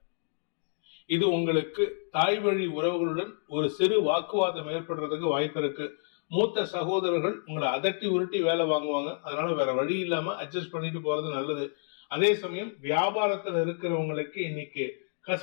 இது உங்களுக்கு தாய் வழி உறவுகளுடன் ஒரு சிறு வாக்குவாதம் ஏற்படுறதுக்கு வாய்ப்பு இருக்கு. மூத்த சகோதரர்கள் உங்களை அதட்டி உருட்டி வேலை வாங்குவாங்க. அதனால வேற வழி இல்லாம அட்ஜஸ்ட் பண்ணிட்டு போறது நல்லது. அதே சமயம் வியாபாரத்துல இருக்கிறவங்களுக்கு இன்னைக்கு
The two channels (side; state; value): right; silent; digital silence